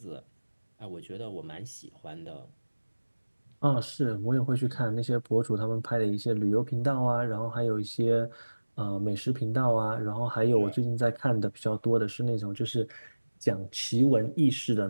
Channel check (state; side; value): inverted; both; correlation -1.00